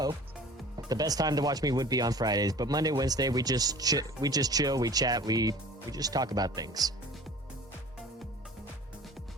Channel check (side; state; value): both; normal; correlation 0.44